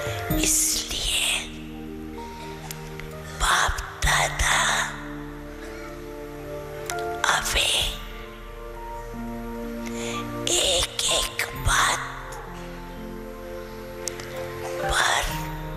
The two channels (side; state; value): both; identical; correlation 1.00